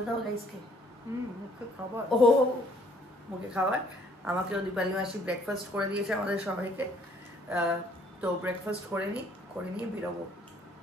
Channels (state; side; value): normal; both; correlation 0.62